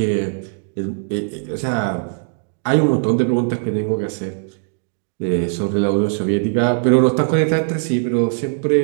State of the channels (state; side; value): silent; left; digital silence